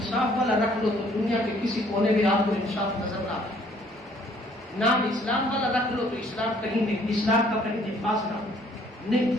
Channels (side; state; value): both; normal; correlation 0.61